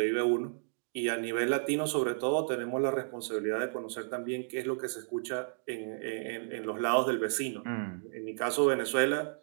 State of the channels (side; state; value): left; silent; digital silence